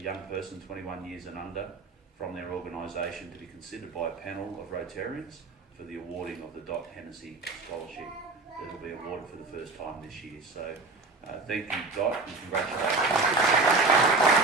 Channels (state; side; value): quieter; left; 3.6 dB